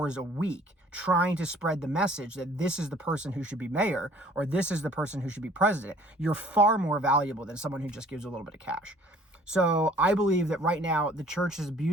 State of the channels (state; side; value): normal; both; correlation 0.54